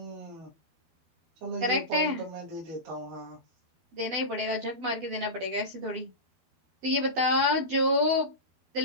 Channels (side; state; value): left; late; 12 ms